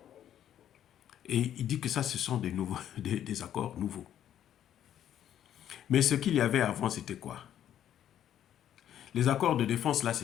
Et il dit que ça, ce sont des accords nouveaux. Mais ce qu'il y avait avant, c'était quoi? Les accords de défense, là,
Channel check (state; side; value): quieter; right; 10.7 dB